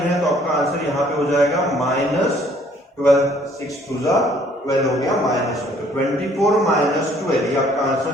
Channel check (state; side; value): normal; both; correlation 0.60